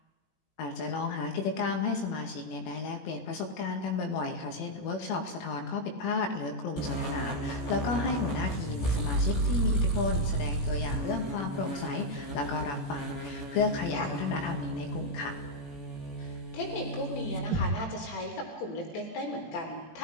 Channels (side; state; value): right; late; 18 ms